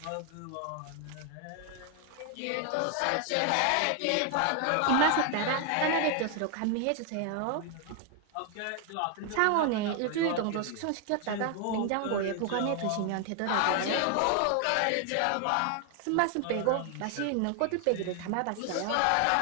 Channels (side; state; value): both; different; correlation 0.00